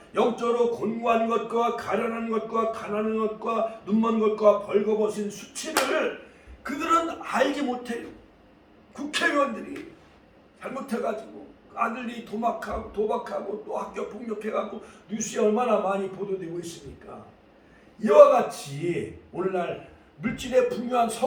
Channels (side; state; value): both; identical; correlation 1.00